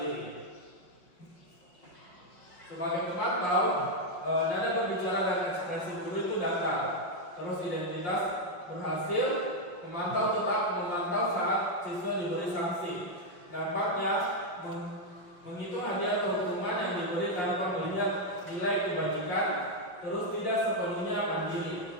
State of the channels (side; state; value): right; late; 5.6 ms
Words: Sebagai pemantau, nada berbicara dan ekspresi guru itu datar. Terus identitas berhasil, pemantau tetap memantau saat siswa diberi sanksi. Dampaknya menghitung hadiah atau hukuman yang diberi tanpa melihat nilai kebajikan, terus tidak sepenuhnya mandiri.